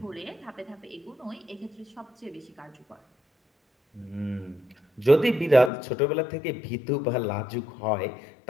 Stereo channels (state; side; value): drops out; right; at 5.7 s